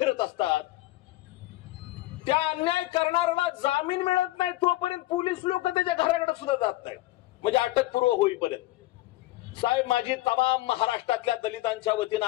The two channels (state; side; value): quieter; right; 17.8 dB